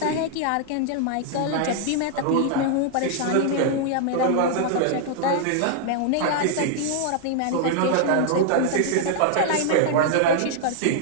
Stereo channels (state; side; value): different; both; correlation 0.00